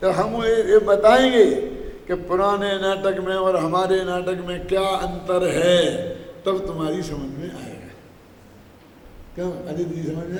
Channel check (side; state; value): both; identical; correlation 1.00